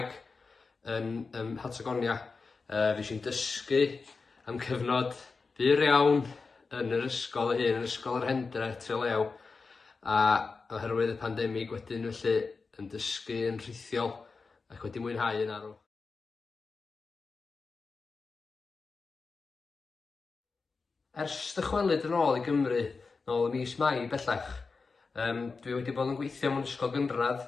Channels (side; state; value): right; quieter; 4.4 dB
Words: yn Patagonia. Fues i'n dysgu am cyfnod byr iawn yn yr ysgol hyn, yn ysgol yr Hendre, Trelew, a oherwydd y pandemig wedyn felly yn dysgu yn rhithiol ac wedi mwynhau yn arw. Ers dychwelyd yn ôl i Gymru, nôl ym mis Mai bellach, dwi wedi bod yn gweithio mewn ysgol gynradd